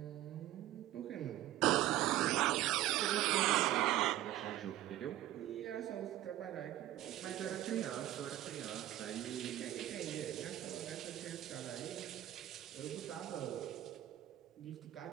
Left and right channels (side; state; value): left; quieter; 13.7 dB